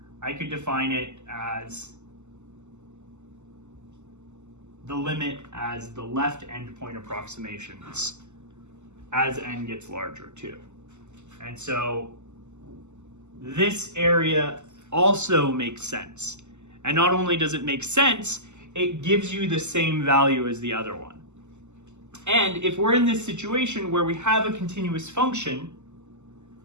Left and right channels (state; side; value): late; left; 0.83 ms